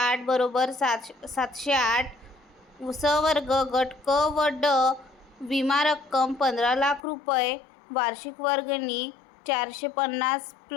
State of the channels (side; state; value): right; drops out; at 7.0 s